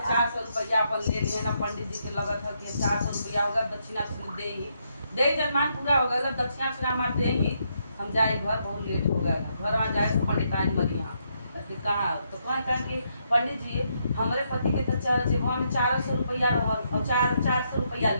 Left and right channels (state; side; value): inverted; both; correlation -0.77